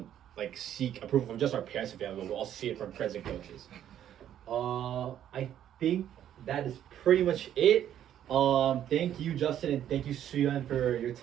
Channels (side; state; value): left; quieter; 10.7 dB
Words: like seek approval from just our parents and family, but we'll also see it from friends and coaches. I think that is pretty much it. Thank you, Justin, and thank you, Suyun, for your